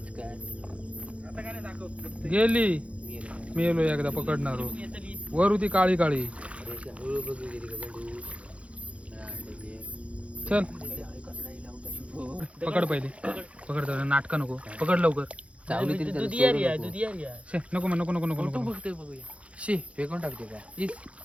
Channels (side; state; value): left; late; 0.062 ms